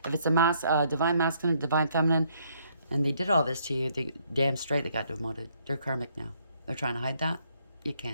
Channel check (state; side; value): inverted; both; correlation -0.69